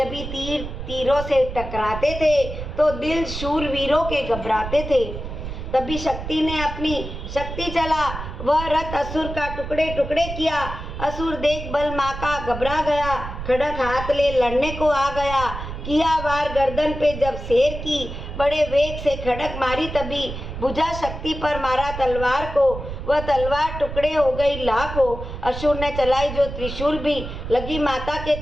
तीर तीरों से टकराते थे तो दिल शूरवीरों के घबराते थे। तभी शक्ति ने अपनी शक्ति चला, वह रथ असुर का टुकड़े टुकड़े किया। असुर देख बल माँ का घबरा गया, खड़क हाथ ले लड़ने को आ गया। किया वार गर्दन पे जब शेर की, बड़े वेग से खड़क मारी तभी। भुजा शक्ति पर मारा तलवार को, वह तलवार टुकड़े हो गई लाखों। असुर ने चलाई जो त्रिशूल भी, लगी माता के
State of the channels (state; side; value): noise; right; rumble, 8 dB below the sound